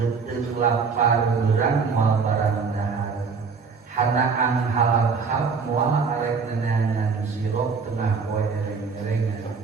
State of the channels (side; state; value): left; quieter; 5.2 dB